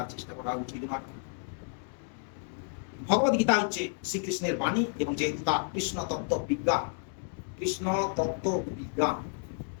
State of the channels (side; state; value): right; silent; 57 dB below the other